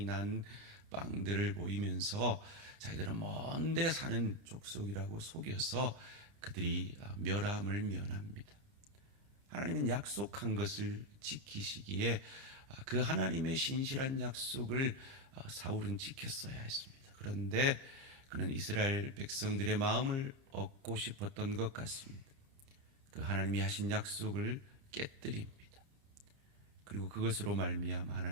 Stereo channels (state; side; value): late; left; 30 ms